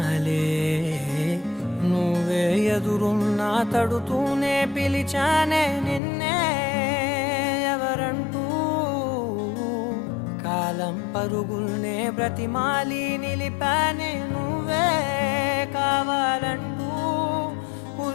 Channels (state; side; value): drops out; right; at 6.0 s